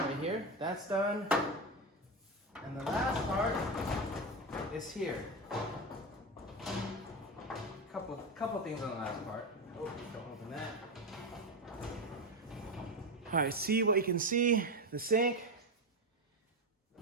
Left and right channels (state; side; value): normal; both; correlation 0.15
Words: here. That's done. And the last part is here. Couple things on the last part. Oh, don't open that. All right, see what you can see. The sink.